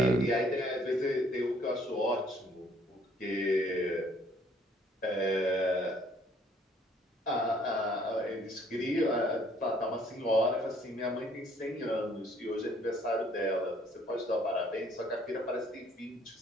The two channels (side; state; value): both; normal; correlation 0.61